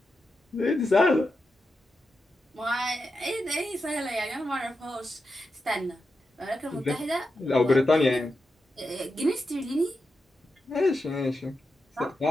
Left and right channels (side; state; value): both; normal; correlation 0.88